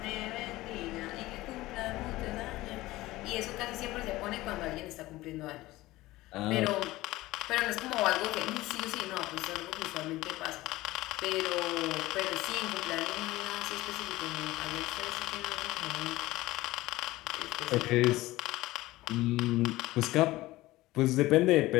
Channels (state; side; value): quieter; right; 18.1 dB